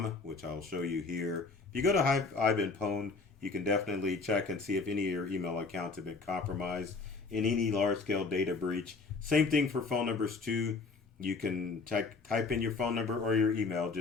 which I'll show you here. If you go to haveibeenpwned, you can definitely check and see if any of your email accounts have been compromised in any large-scale data breach. Same thing for phone numbers too. You can type in your phone number or your email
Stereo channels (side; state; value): right; quieter; 4.2 dB